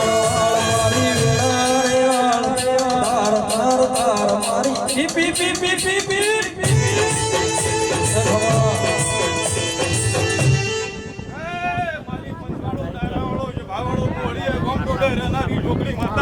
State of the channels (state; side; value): identical; both; correlation 1.00